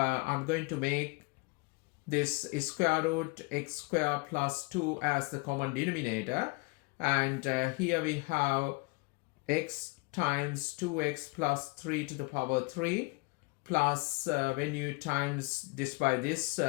going to make this square root x squared plus 2 as the common denominator. And here we have x times 2x plus 3 to the power 3. Plus, when you times this by this,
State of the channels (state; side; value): quieter; right; 28.2 dB